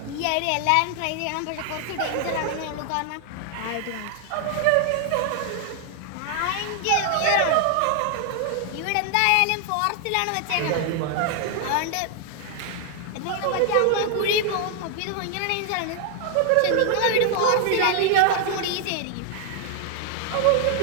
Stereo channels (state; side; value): different; both; correlation 0.00